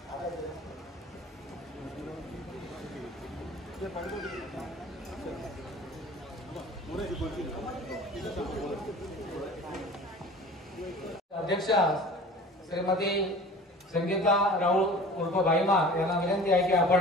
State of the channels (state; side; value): normal; both; correlation 0.42